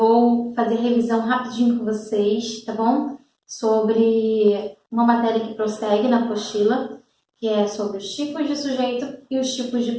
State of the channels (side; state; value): both; identical; correlation 1.00